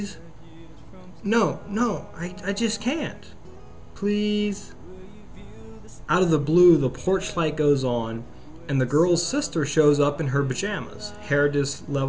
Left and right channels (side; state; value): both; identical; correlation 1.00